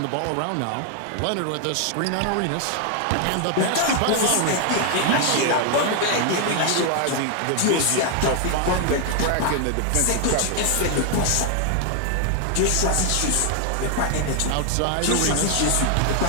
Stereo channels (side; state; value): both; different; correlation 0.00